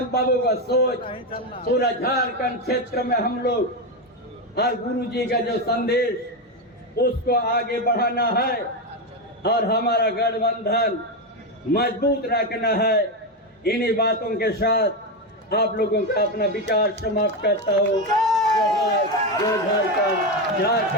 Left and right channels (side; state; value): both; normal; correlation 0.11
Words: बाबू का सोच पूरा झारखंड क्षेत्र में हम लोग और गुरु जी का जो संदेश उसको आगे बढ़ाना है और हमारा गठबंधन मजबूत रखना है। इन्हीं बातों के साथ आप लोगों का अपना विचार समाप्त करता हूँ। जो झारखंड